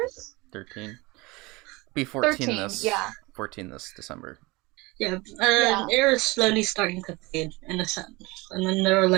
13. Be 14 13, this. yeah. 14 this December. Yeah, an era's slowly starting to fade in a sense, and then there are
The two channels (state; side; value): quieter; left; 23.5 dB